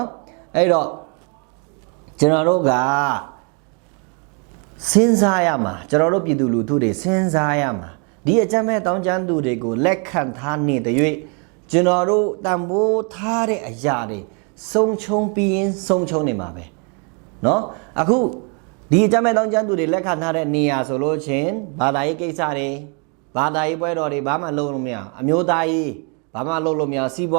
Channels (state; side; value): quieter; left; 36.9 dB